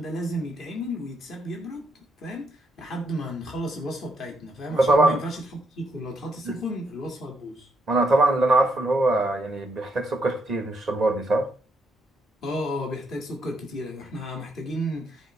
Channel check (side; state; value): both; normal; correlation 0.76